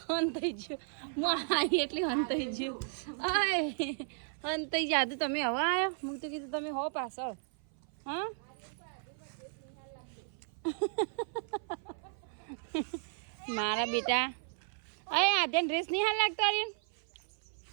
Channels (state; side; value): silent; left; 55 dB below the other